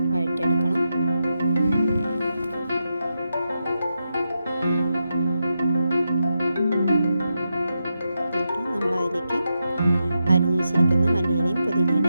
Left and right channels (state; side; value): inverted; both; correlation -0.87